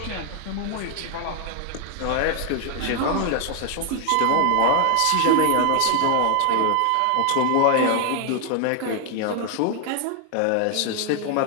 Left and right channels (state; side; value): different; both; correlation 0.00